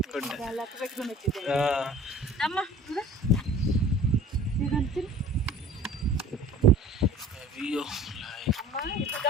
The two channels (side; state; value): both; normal; correlation 0.47